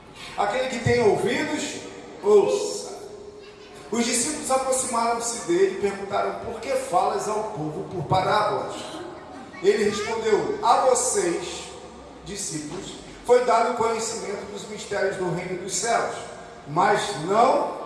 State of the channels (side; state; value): both; identical; correlation 1.00